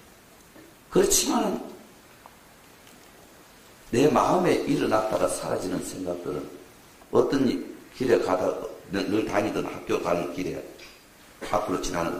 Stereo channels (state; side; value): identical; both; correlation 1.00